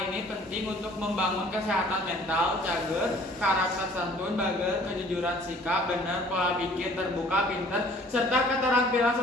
ini penting untuk membangun kesehatan mental, cager, karakter santun, bager, kejujuran sikap, benar, pola pikir, terbuka, pintar, serta keterampilan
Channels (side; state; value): both; normal; correlation 0.54